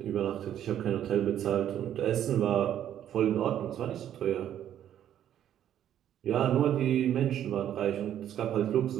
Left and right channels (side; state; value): left; quieter; 10.7 dB